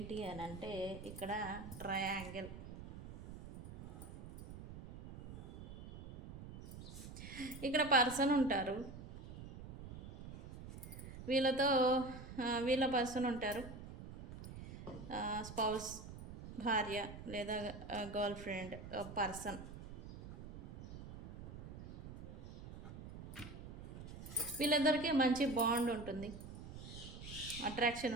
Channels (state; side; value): noise; right; rumble, 12 dB below the sound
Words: అని అంటే, ఇక్కడ ట్రయాంగిల్. ఇక్కడ పర్సన్ ఉంటారు, వీళ్ళ పర్సన్ ఉంటారు, స్పౌస్, భార్య లేదా గర్ల్ ఫ్రెండ్ పర్సన్. వీళ్ళందరికీ మంచి బాండ్ ఉంటుంది, అట్రాక్షన్